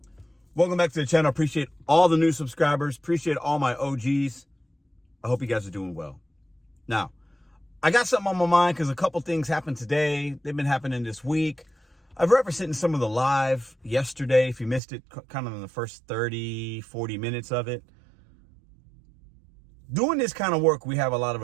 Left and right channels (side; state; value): left; drops out; at 14.8 s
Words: Welcome back to the channel. Appreciate all the new subscribers. Appreciate all my OGs. I hope you guys are doing well. Now, I got something on my mind because a couple things happened today. They've been happening this week. I've referenced it in some of the live yesterday. If you missed it, kind of in the first 30, 40 minutes of it. Doing this kind of work, we have a lot of